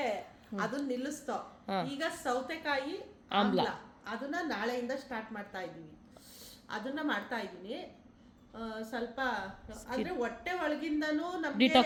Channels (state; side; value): identical; both; correlation 1.00